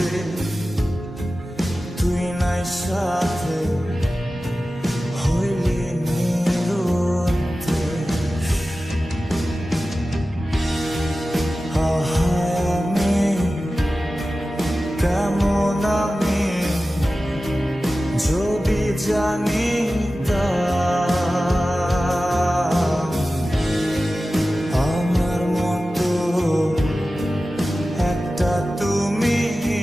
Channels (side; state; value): both; normal; correlation 0.95